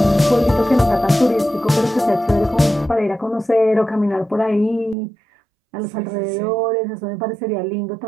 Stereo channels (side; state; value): left; drops out; at 5.0 s